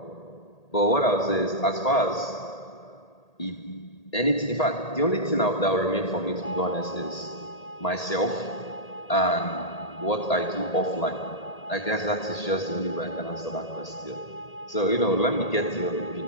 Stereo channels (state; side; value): late; right; 1.8 ms